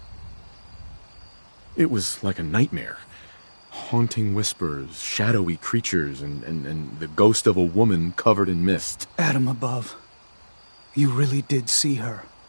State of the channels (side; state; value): both; inverted; correlation -1.00